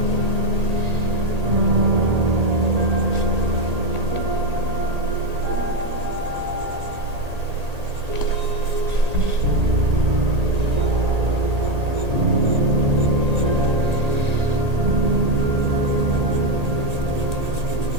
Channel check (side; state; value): left; late; 1.8 ms